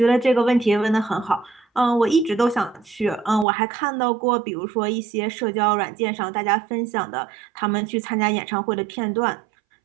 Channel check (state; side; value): drops out; left; at 3.5 s